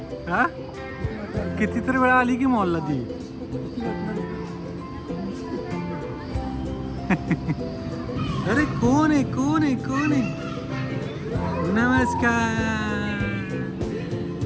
हा कितीतरी वेळा आली की मॉलला ती. अरे कोण आहे कोण आहे कोण आहे. नमस्कार.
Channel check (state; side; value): identical; both; correlation 1.00